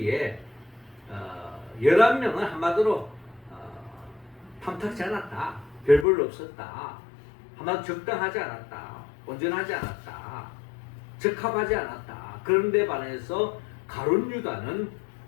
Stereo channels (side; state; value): right; drops out; at 6.1 s